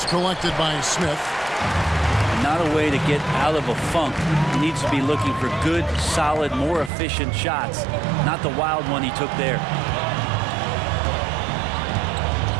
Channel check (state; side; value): drops out; left; at 6.9 s